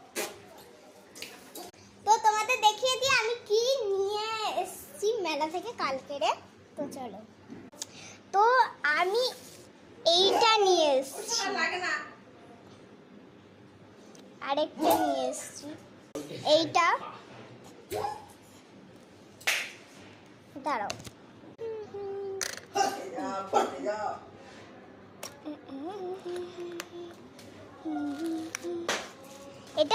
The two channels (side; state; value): both; identical; correlation 1.00